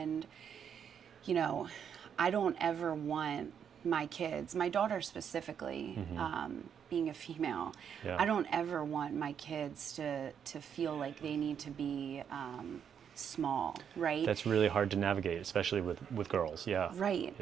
you know, I don't ever want my kids, my daughter specifically, being a female, I don't ever want my kids to feel like they need to be small, right? That's really hard to navigate, especially with girls. Yeah. Right.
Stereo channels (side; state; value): left; quieter; 8.0 dB